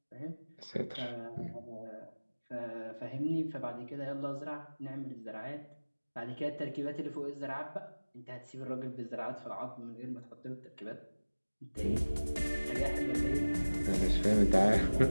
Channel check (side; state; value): both; inverted; correlation -1.00